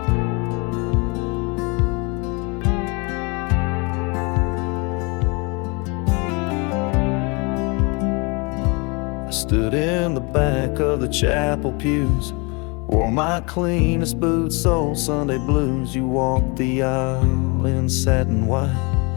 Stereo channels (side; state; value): right; quieter; 30.0 dB